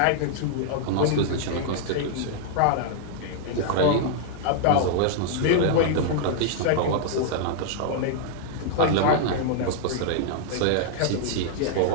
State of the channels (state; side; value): different; both; correlation -0.01